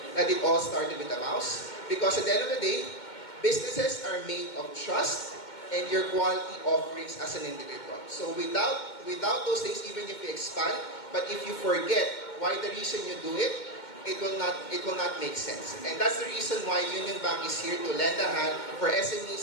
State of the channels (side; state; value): right; late; 2.2 ms